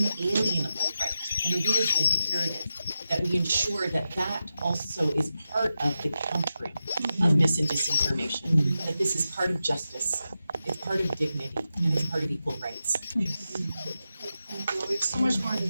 inalienable right. And it is imperative that we ensure that that also is part of the countering of mis and disinformation, that this is part of justice, it's part of dignity, and it's part of equal rights. Thank you. We have so much more to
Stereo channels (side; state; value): both; inverted; correlation -0.91